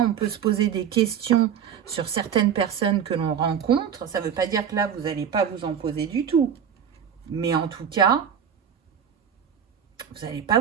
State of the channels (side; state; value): left; quieter; 8.1 dB